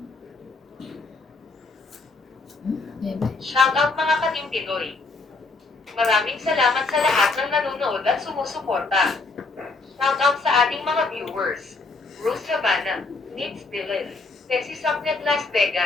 Shoutout mga Katim Pinoy. Maraming salamat sa lahat ng nanonood at sumusuporta. Shoutout sa ating mga viewers. Bruce Havana, Nitz Dillon, Tessie Sapnet Las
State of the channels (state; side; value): quieter; right; 3.7 dB